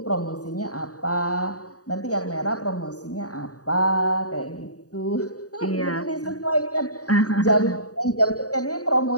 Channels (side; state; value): right; late; 0.67 ms